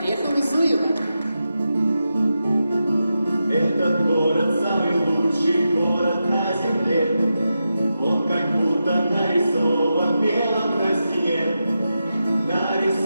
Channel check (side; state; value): both; inverted; correlation -0.89